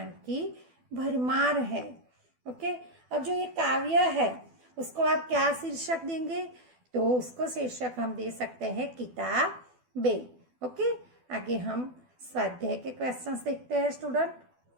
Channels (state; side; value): late; left; 12 ms